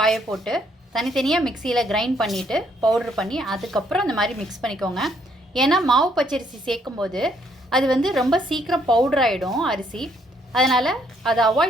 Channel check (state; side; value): normal; both; correlation 0.69